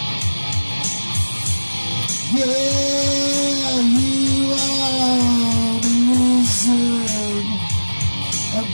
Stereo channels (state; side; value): inverted; both; correlation -1.00